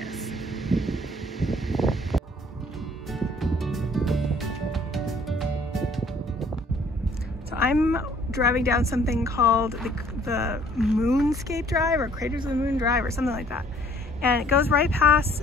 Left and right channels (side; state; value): both; normal; correlation 0.59